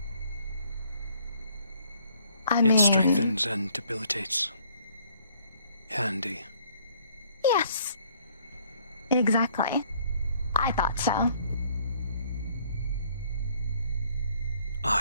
It strengthens and debilitates. Handy. Yes. Exactly. I thought so.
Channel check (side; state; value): both; inverted; correlation -0.63